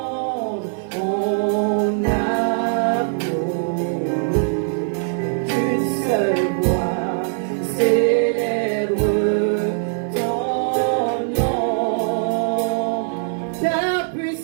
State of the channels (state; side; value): silent; left; digital silence